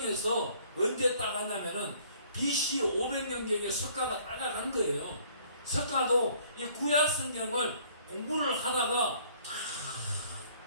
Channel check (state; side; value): inverted; both; correlation -0.58